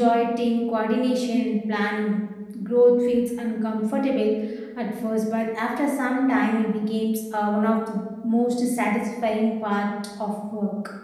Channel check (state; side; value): identical; both; correlation 1.00